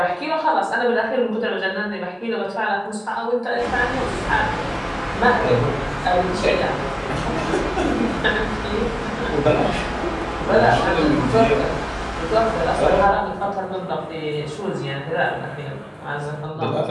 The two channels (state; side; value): identical; both; correlation 1.00